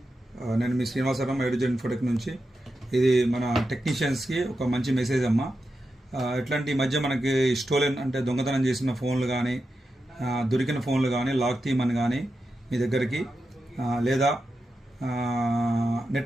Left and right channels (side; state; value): both; normal; correlation 0.89